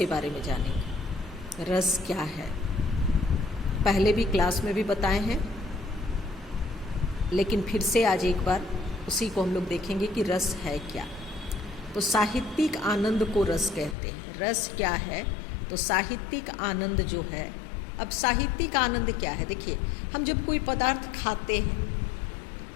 बारे में जानेंगे। रस क्या है? पहले भी क्लास में भी बताए हैं, लेकिन फिर से आज एक बार उसी को हम लोग देखेंगे कि रस है क्या। तो साहित्यिक आनंद को रस कहते हैं। रस क्या है? तो साहित्यिक आनंद जो है, अब साहित्यिक आनंद क्या है? देखिए, हम जब कोई पदार्थ खाते हैं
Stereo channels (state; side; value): drops out; right; at 14.0 s